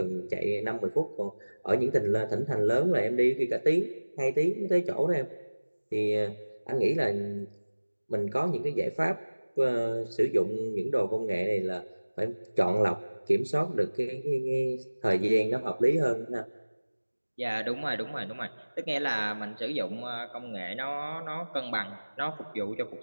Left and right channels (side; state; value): both; inverted; correlation -1.00